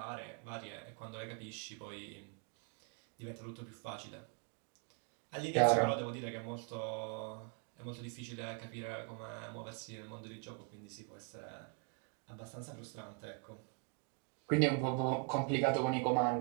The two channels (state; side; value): quieter; left; 38.0 dB